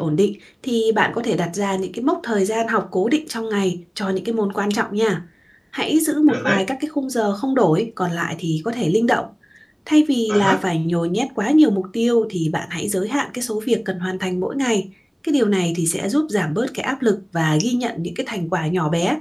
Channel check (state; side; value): identical; both; correlation 1.00